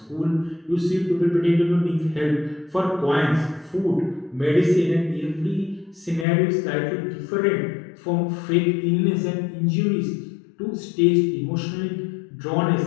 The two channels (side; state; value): right; drops out; at 6.2 s